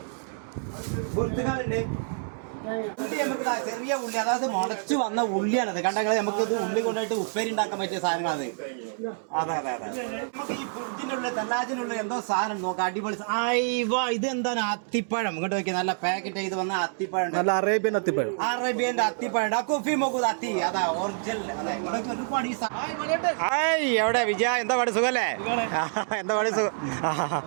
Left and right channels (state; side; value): silent; left; 60 dB below the other